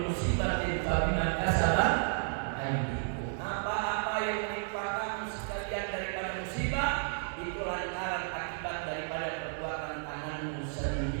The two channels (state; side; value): silent; left; 56 dB below the other